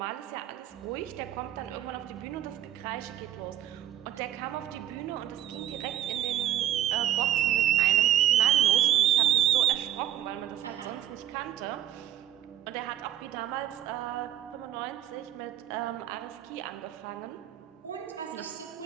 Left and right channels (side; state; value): left; quieter; 11.7 dB